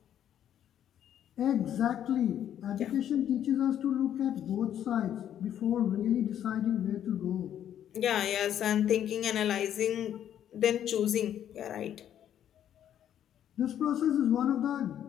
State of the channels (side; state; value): right; quieter; 10.3 dB